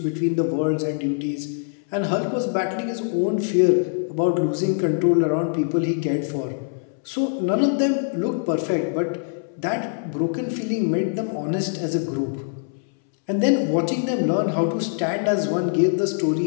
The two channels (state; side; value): silent; right; 63 dB below the other